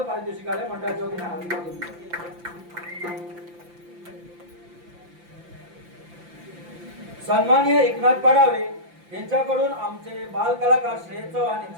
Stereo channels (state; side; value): late; left; 5.8 ms